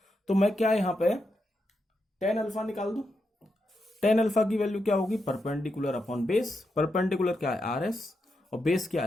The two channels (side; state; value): both; normal; correlation 0.85